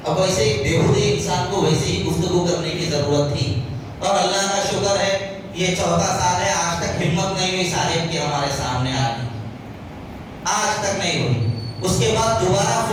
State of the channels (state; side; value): identical; both; correlation 1.00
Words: اب ویسے ہی بےہودی انسان کو ویسے ہی گفتگو کرنے کی ضرورت تھی, اور اللہ کا شکر ہے یہ 14 سال ہے, آج تک ہمت نہیں ہوئی صاحب کی ہمارے سامنے آنے, آج تک نہیں ہوئی. اس کے بعد دوبارہ